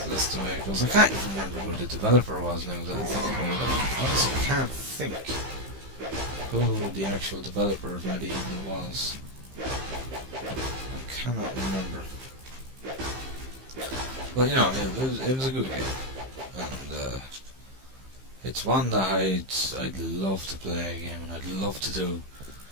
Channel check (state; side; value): late; left; 15 ms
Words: the way it goes. I can't even remember who the developer was now that I think about it. I honestly can't think who the actual developer of Medieval was. I cannot remember. But you know, it was a good game, and it's one that I'd love to play again, and I'd love to do.